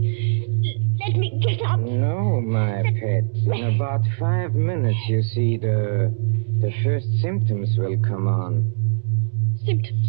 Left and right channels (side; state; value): left; silent; digital silence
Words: Let me get up. No, my pet. In about 5 minutes, you see, the first symptoms will come on.